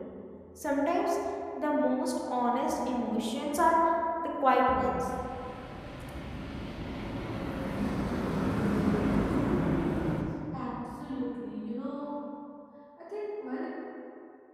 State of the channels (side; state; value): both; identical; correlation 1.00